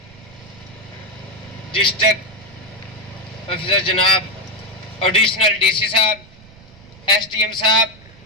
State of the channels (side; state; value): right; noise; rumble, 23 dB below the sound